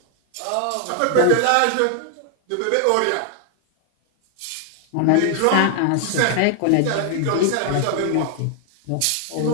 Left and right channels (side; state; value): both; different; correlation 0.00